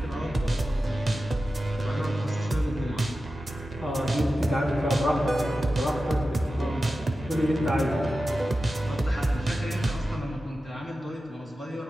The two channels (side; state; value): both; normal; correlation 0.93